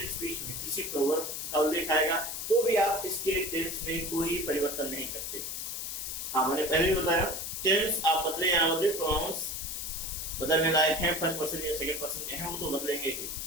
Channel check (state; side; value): noise; left; hiss, 5 dB below the sound